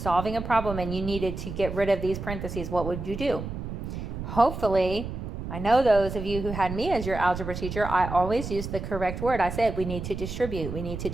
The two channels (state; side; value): noise; right; rumble, 7 dB below the sound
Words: solving a problem and you needed to get rid of these parentheses? What would you do? Hopefully, I know those of you who had me as your algebra teacher, I always used the correct word. I said we need to distribute. We need to